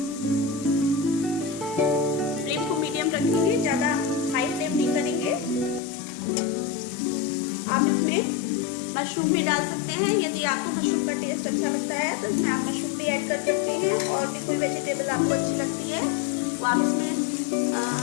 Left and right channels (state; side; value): drops out; right; at 5.8 s